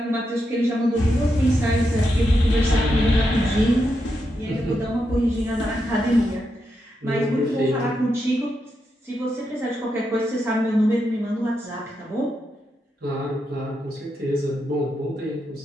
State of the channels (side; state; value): both; normal; correlation 0.84